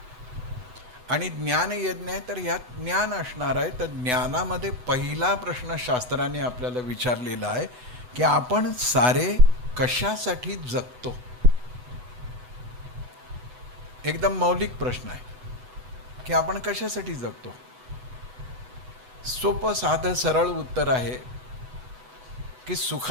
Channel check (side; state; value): left; late; 8.0 ms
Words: आणि ज्ञान यज्ञ आहे तर यात ज्ञान असणार आहे. तर ज्ञानामध्ये पहिला प्रश्न शास्त्राने आपल्याला विचारलेला आहे की आपण सारे कशासाठी जगतो. एकदम मौलिक प्रश्न आहे की आपण कशासाठी जगतो. सोपं साधं सरळ उत्तर आहे की